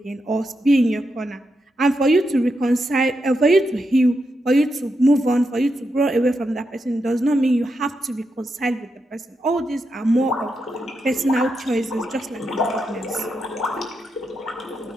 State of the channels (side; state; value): both; normal; correlation 0.85